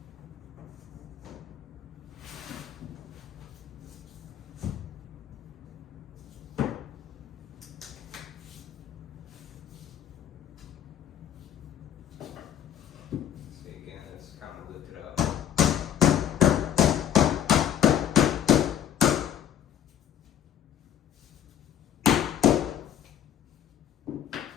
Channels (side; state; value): right; quieter; 10.1 dB